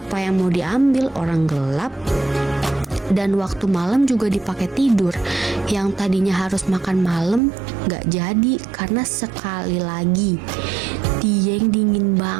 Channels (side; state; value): left; drops out; at 7.4 s